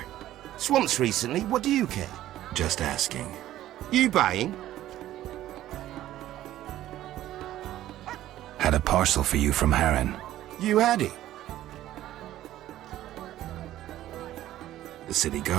Swamps recently, what do you care? Just asking. You buying? Had a parcel for you from Harren. You had it. The city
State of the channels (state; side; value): quieter; left; 13.6 dB